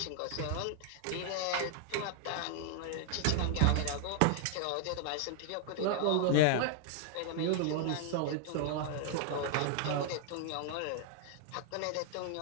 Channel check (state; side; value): different; both; correlation 0.00